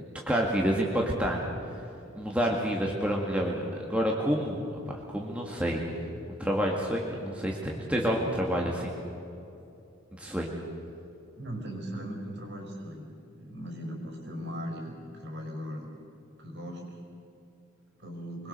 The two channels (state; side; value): normal; both; correlation 0.66